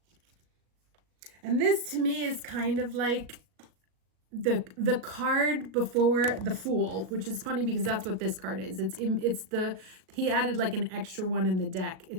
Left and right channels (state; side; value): late; left; 37 ms